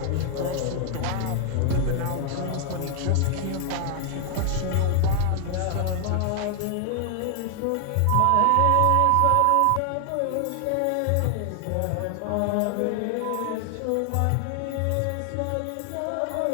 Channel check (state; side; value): different; both; correlation 0.00